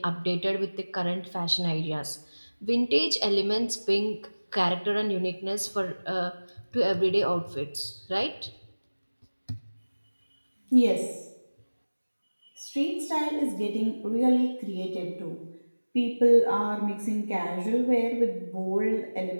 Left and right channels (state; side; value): inverted; both; correlation -1.00